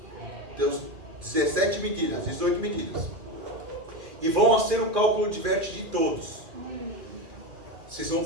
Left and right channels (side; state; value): left; late; 2.4 ms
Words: 17 medidas, 18 medidas. E vão fazer o cálculo de vértice de todos. Vocês vão